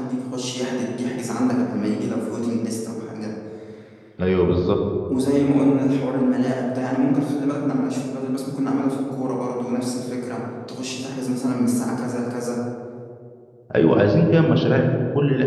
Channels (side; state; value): both; identical; correlation 1.00